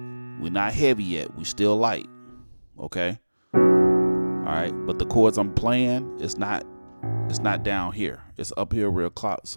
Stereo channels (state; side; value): inverted; both; correlation -1.00